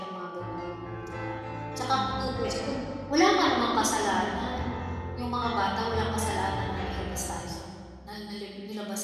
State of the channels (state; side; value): identical; both; correlation 1.00